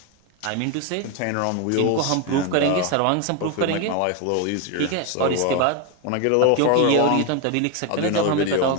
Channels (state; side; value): different; both; correlation 0.02